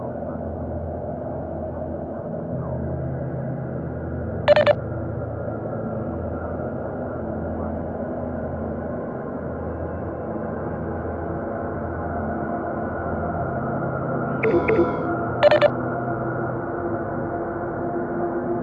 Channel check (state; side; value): identical; both; correlation 1.00